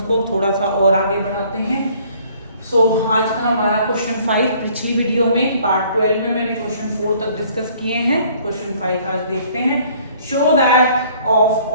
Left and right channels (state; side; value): inverted; both; correlation -0.58